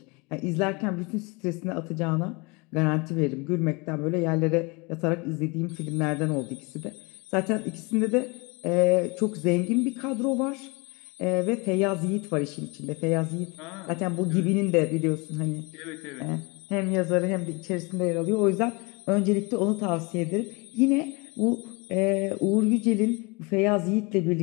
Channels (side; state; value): right; quieter; 28.4 dB